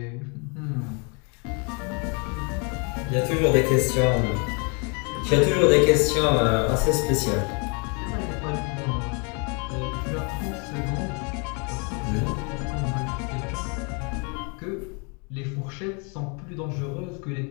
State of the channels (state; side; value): quieter; right; 34.8 dB